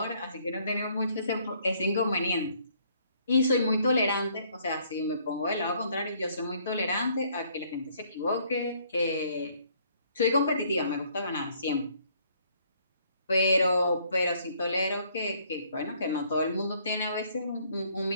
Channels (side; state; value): both; inverted; correlation -0.64